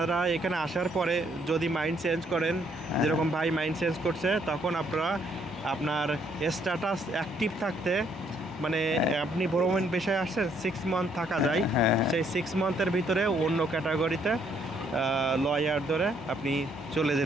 এখানে আসার পরে যদি মাইন্ড চেঞ্জ করেন, যেরকম ভাই মাইন্ড চেঞ্জ করছে, তখন আপনারা আপনার স্ট্যাটাস অ্যাক্টিভ থাকতে, মানে আপনি ভ্রমণ বিষয়ে আসছেন 6 মান্থ থাকা যায়, হ্যাঁ। সেই 6 মান্থের ভিতরে অন্য ক্যাটাগরিতে লয়ার ধরে আপনি চলে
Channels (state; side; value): normal; both; correlation 0.69